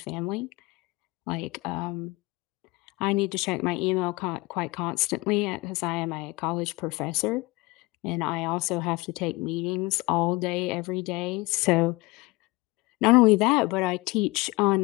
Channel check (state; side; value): quieter; right; 23.4 dB